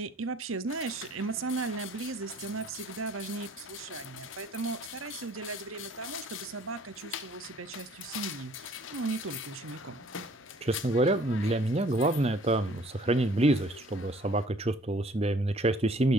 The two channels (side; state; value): both; normal; correlation 0.55